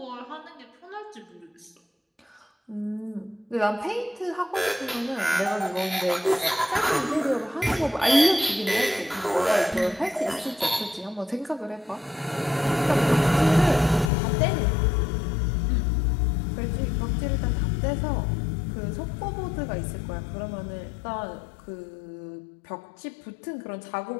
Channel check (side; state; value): right; drops out; at 14.1 s